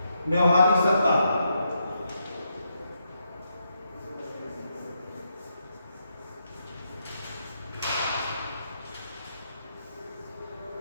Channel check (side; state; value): both; inverted; correlation -0.81